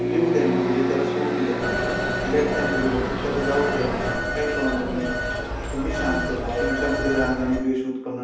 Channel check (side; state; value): both; identical; correlation 1.00